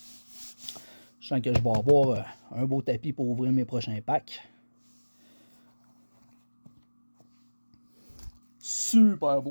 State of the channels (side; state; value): both; inverted; correlation -1.00